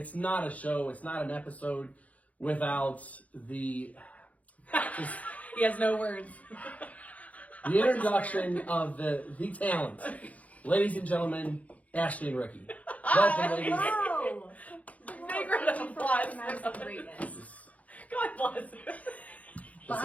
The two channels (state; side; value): late; right; 0.069 ms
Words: not a show, it's not an episode without the He has no words. the introduction of the talent. Ladies and gentlemen, Ashley and Ricky. Welcome, ladies. Hello! Big round of applause Nice for and greatness. God bless.